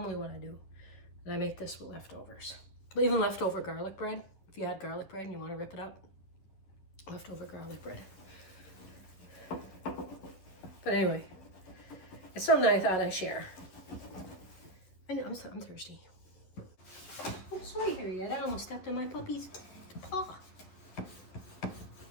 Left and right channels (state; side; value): late; right; 11 ms